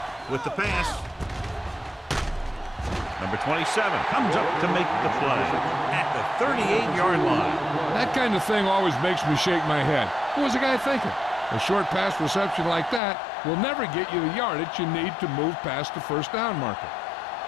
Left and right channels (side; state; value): right; drops out; at 13.0 s